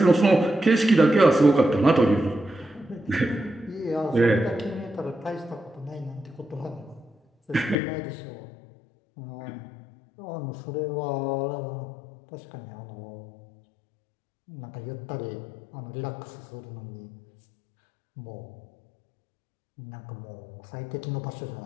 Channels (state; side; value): drops out; right; at 7.8 s